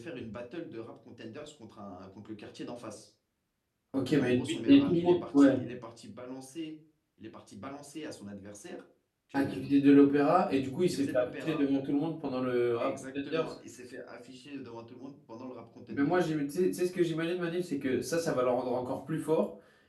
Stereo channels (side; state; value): both; identical; correlation 1.00